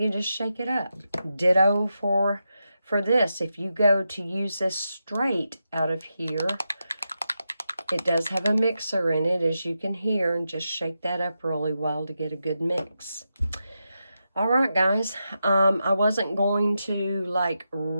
just shake it up. Ditto for this. If you go to use this straight out of here, it does have a mixer in it, as you can hear. And just shake that up really well to get a good mix. All right, guys, I wasn't going to like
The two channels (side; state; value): both; inverted; correlation -0.88